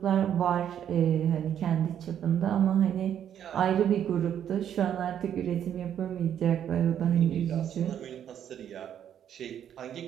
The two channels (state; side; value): quieter; left; 9.6 dB